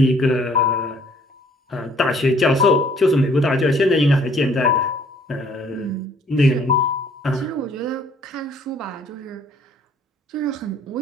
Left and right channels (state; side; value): normal; both; correlation 0.60